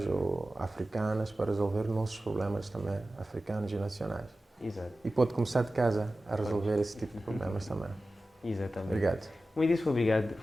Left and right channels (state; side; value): normal; both; correlation 0.95